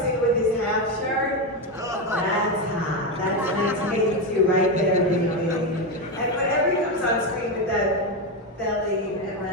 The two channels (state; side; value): normal; both; correlation 0.11